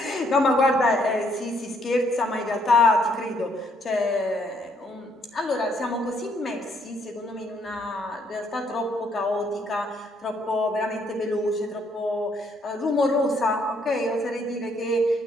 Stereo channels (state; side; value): normal; both; correlation 0.69